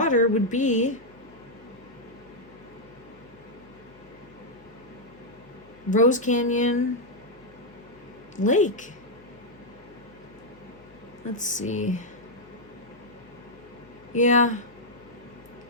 would be Rose Canyon Lake. Let's see. Yeah.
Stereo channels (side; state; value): left; noise; hum, 27 dB below the sound